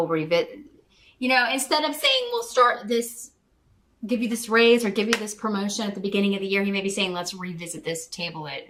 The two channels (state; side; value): identical; both; correlation 1.00